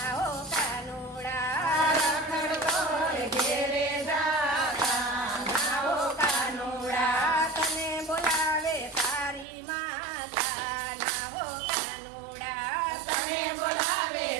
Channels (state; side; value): drops out; left; at 9.5 s